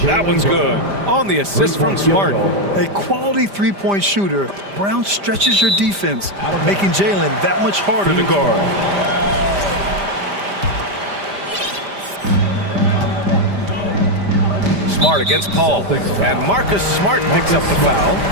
That one's good. On the assist from Smart. A quality three-point shooter, Brown stretches your defense, making Jalen that much harder to guard. Smart against Paul, and Marcus Smart picks up the foul.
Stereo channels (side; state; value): left; late; 5.0 ms